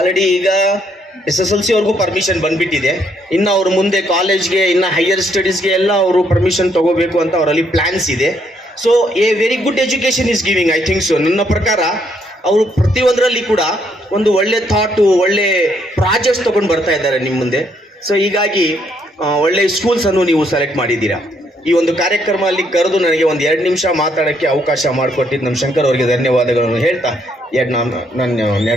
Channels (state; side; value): normal; both; correlation 0.71